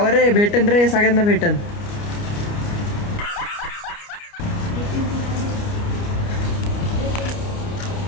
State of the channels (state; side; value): late; right; 29 ms